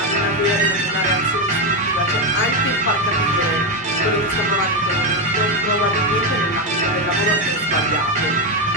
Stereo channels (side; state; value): both; normal; correlation 0.08